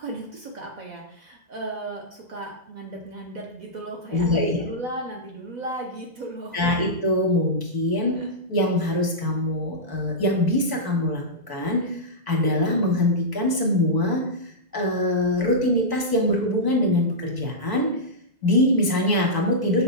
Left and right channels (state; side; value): late; left; 2.0 ms